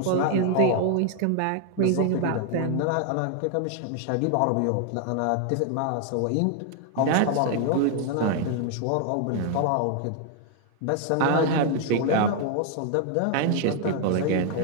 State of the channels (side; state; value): both; different; correlation 0.01